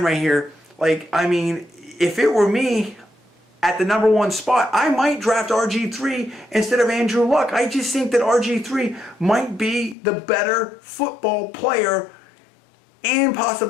right here, like, I mean, if it were me at the #1 spot, I might draft RG3 instead of Andrew Luck. I just think that RG3 might be the better football player and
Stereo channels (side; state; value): right; drops out; at 10.0 s